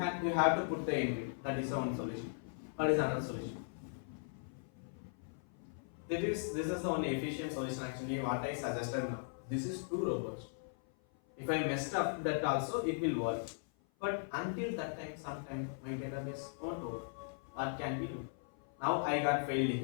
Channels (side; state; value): right; silent; 52 dB below the other